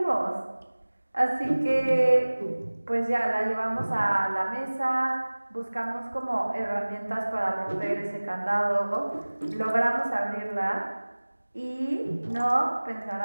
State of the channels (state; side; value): inverted; both; correlation -1.00